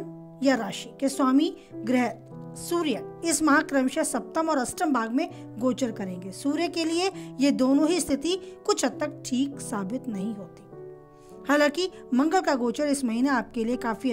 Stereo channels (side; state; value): both; identical; correlation 1.00